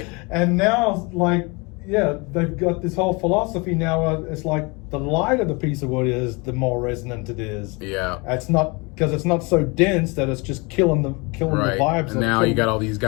And now, like, yeah, they've got this whole philosophy now. It's like the lighter the piece of wood is, the more resonant it is. Yeah. It's not because it's not so dense that it's just killing the Right. vibes. And now you got all these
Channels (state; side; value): quieter; right; 28.2 dB